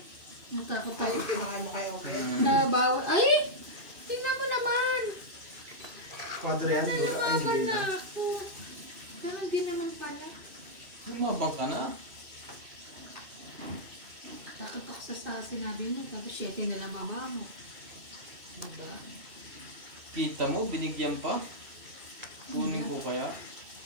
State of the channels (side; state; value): left; late; 2.6 ms